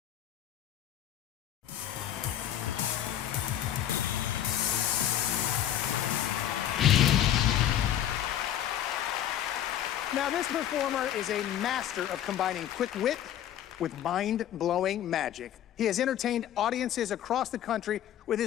Now, this performer is a master of combining quick wit with mind-blowing magic. He has entertained audiences across the country with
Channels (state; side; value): quieter; right; 11.0 dB